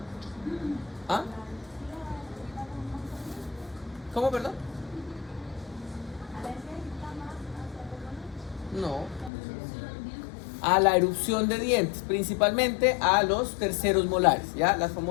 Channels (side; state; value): right; drops out; at 9.3 s